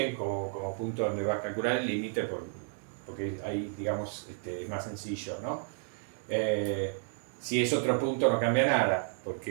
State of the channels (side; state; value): left; silent; digital silence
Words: como punto donde va a calcular el límite porque ahí, digamos, es más sencillo, ¿no? Si es otro punto no cambia nada,